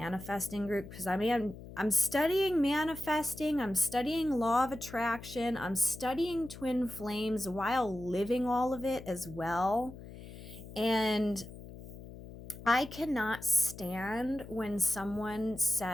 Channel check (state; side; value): noise; left; hum, 14 dB below the sound